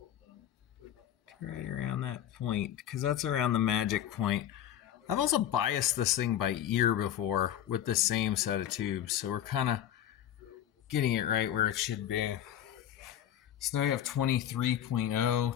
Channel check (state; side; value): quieter; right; 11.0 dB